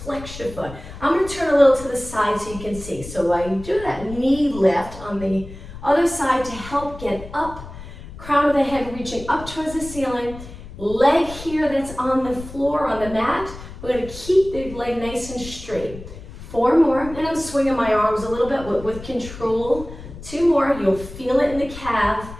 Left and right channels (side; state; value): left; noise; rumble, 14 dB below the sound